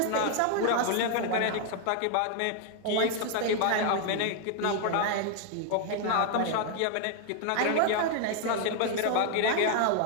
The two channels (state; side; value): different; both; correlation 0.00